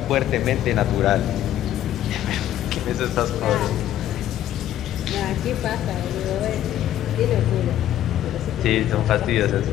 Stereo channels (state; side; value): quieter; right; 12.1 dB